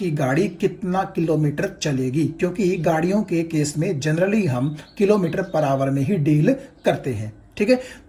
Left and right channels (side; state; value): both; identical; correlation 1.00